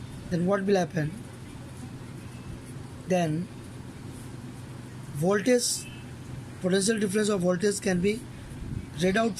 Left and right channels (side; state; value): both; identical; correlation 1.00